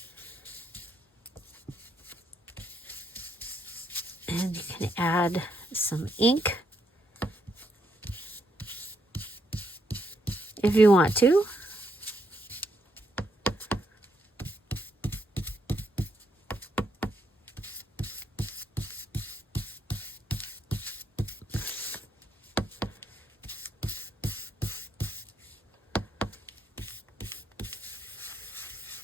And you can add some ink if you want to.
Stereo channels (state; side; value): normal; both; correlation 0.76